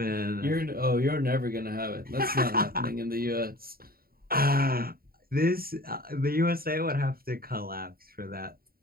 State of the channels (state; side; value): late; left; 0.43 ms